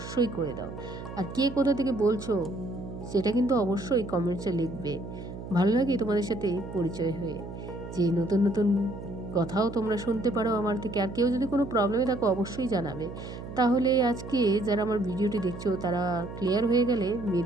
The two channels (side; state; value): right; noise; hum, 10 dB below the sound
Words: করে দাও, আর কে কোথা থেকে বলছো সেটা কিন্তু অবশ্যই কমেন্টসে লিখবে। ভালো লাগে তোমাদের সাথে পরিচয় হয়ে, যে নতুন নতুন কথাও তোমরা শুনতে পারো আমার থেকে। আর কেউ যদি কোনো প্রবলেমে থাকো অবশ্যই জানাবে। তাহলে আজকে যারা আমার ভিডিওটি দেখছো তারা ক্লিয়ার হয়ে গেলে